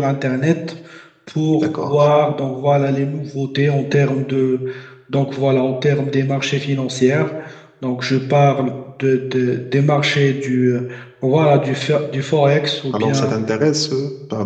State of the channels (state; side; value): identical; both; correlation 1.00